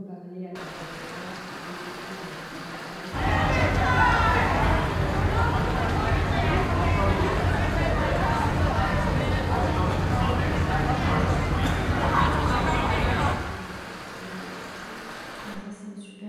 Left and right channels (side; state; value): both; identical; correlation 1.00